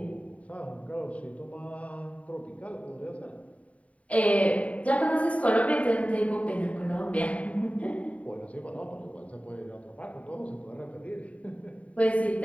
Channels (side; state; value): right; late; 0.067 ms